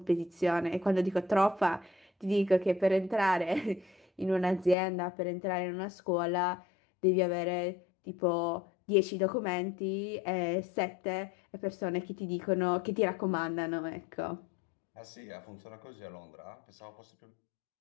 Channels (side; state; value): right; drops out; at 4.8 s